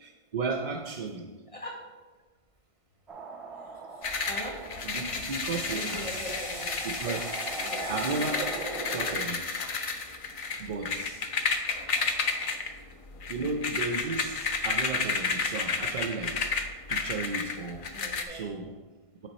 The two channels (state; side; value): late; right; 1.5 ms